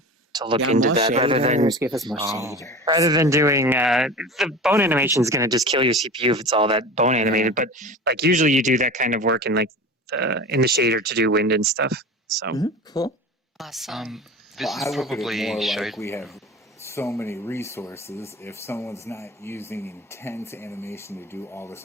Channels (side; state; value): both; normal; correlation 0.33